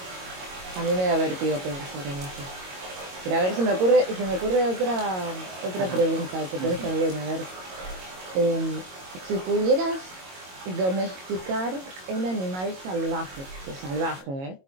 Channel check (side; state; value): left; late; 22 ms